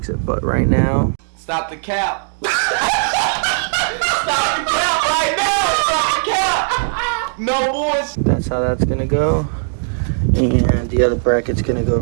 it. But right now, stop the cap. Stop the cap right now. Stop the cap. No boys. That's how that's gonna go. And the other bracket's gonna go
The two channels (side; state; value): left; silent; digital silence